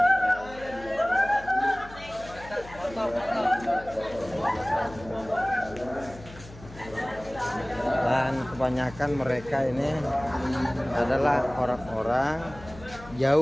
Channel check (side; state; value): left; noise; hum, 18 dB below the sound